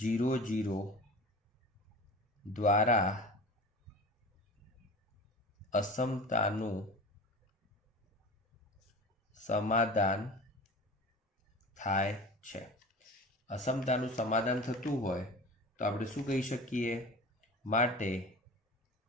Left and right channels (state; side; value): normal; both; correlation 0.36